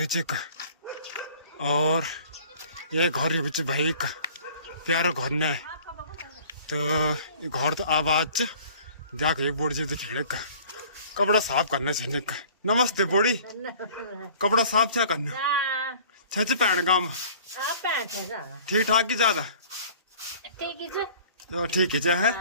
च का और ये घर ये बेच भाई का प्यारो घर ने तो ये घर तो आवाज च जाके एक बोर्ड जी दिखाने का कपड़ा साफ करना चाहिए का नमस्ते बोड़ी कपड़ा साफ क्या करना छच पैण गांव ठीक ठाक की ज्यादा तो ठीक है है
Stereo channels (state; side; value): inverted; both; correlation -0.49